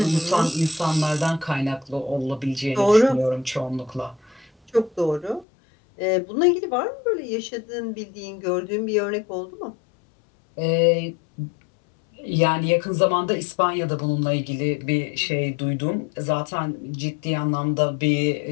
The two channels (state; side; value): drops out; right; at 5.5 s